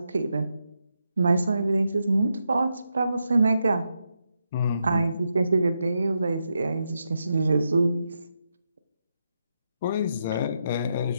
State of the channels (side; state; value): both; inverted; correlation -0.84